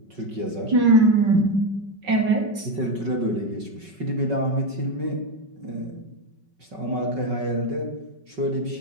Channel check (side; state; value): left; late; 5.3 ms